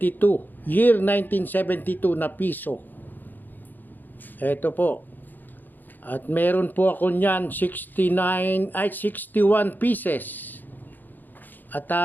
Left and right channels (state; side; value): late; right; 0.088 ms